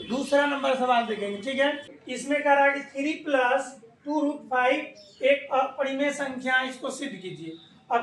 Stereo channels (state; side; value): identical; both; correlation 1.00